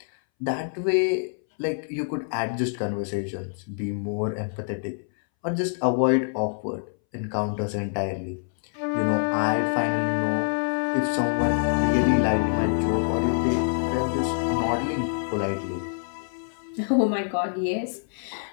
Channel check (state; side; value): silent; right; 61 dB below the other